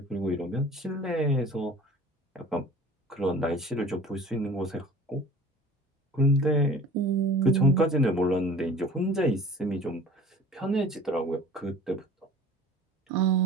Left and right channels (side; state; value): both; normal; correlation 0.44